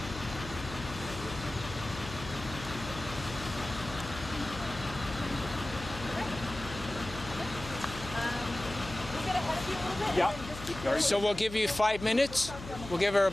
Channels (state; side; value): noise; left; hum, 12 dB below the sound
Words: We'll get ahead of you a little bit Yeah. and then just keep Very So we'll give you 5 minutes. We'll give her